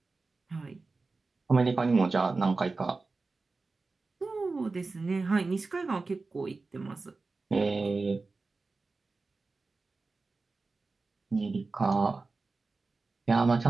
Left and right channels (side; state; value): left; quieter; 3.8 dB